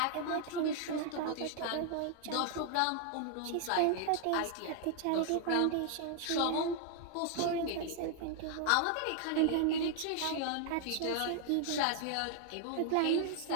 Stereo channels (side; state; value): both; different; correlation 0.00